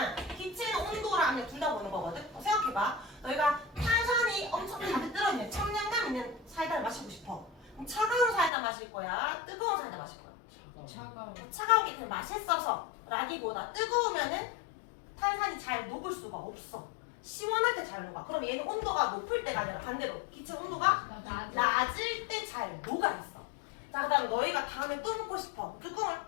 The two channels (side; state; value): right; drops out; at 8.5 s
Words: 기체는 온도랑 압력 둘 다 보는 거거든. 생각해봐. 너희가 탄산이 엄청 가득 들어있는 청량감 있는 사이다를 마시고 싶어. 그럼 차가운 사이다 마실 거야? 뜨거운 사이다 마실 거야? 차가운 게 그냥 맛있어서 라기보다 뜨거우면은 탄산이 잘 녹을 수가 없어. 시원할 때 잘 녹아. 그럼 얘는 온도가 높을 때가 아니라 반대로 기체 온도가 낮을 때 잘 녹아 있어. 자, 그 다음에 너희가 다음에 또 먹고 싶어. 뚜껑을